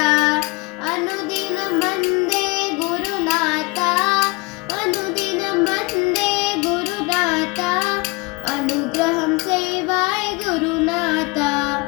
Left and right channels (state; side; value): quieter; right; 25.9 dB